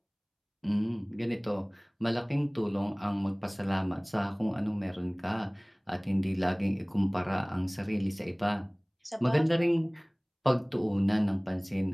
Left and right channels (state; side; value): identical; both; correlation 1.00